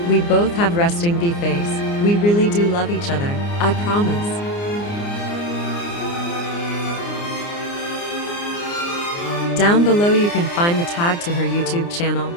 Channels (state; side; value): late; right; 29 ms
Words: we both have resting bee face. We really do love each other, I promise. Down below you can find the tag to her YouTube channel.